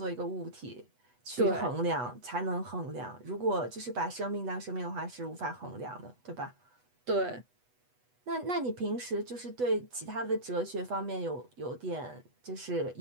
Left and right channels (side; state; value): left; late; 8.1 ms